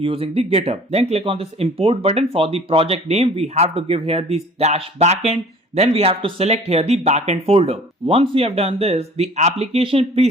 the GitHub. Then click on this import button. For the project name, we have to give here this dash backend. Then we have to select here the backend folder. Once we have done this, the application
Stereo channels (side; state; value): both; normal; correlation 0.49